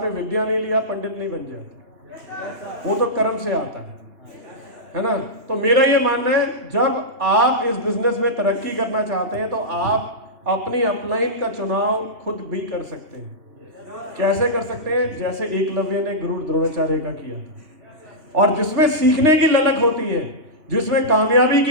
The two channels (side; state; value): left; late; 3.1 ms